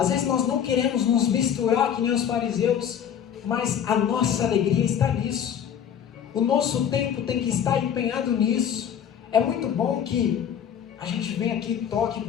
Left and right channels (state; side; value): quieter; right; 8.8 dB